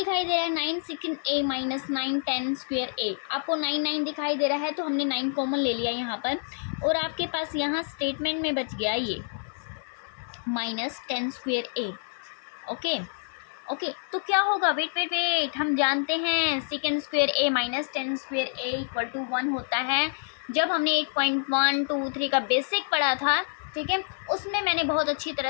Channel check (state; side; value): silent; right; 60 dB below the other